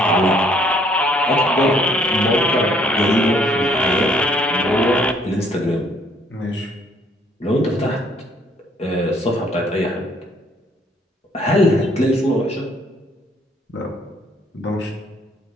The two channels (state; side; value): normal; both; correlation 0.63